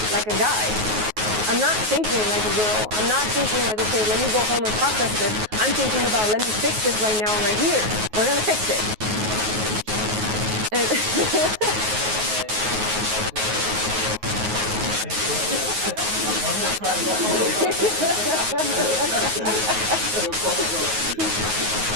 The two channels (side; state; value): left; late; 9.4 ms